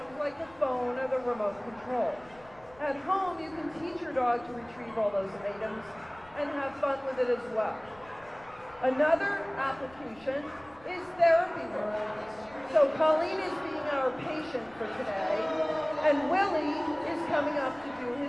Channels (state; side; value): noise; left; rumble, 25 dB below the sound